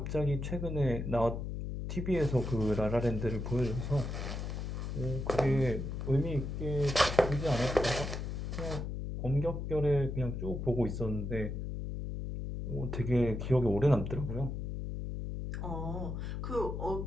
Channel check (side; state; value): left; noise; hum, 4 dB below the sound